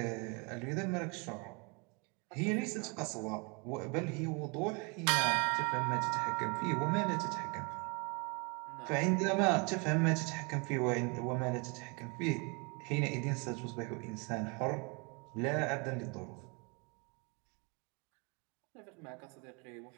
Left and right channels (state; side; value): quieter; left; 32.1 dB